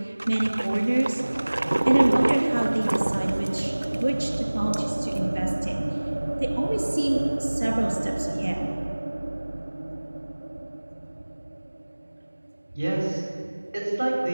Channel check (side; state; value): both; inverted; correlation -1.00